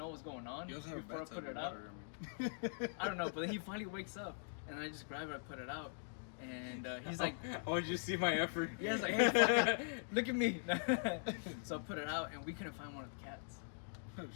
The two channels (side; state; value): right; silent; digital silence